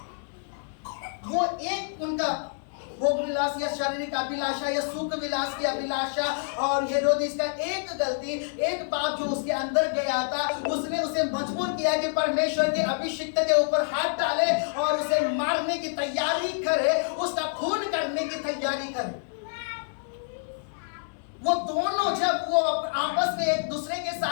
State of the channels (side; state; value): right; silent; digital silence